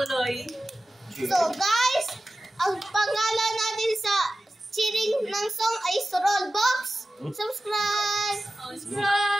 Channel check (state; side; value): normal; both; correlation 0.95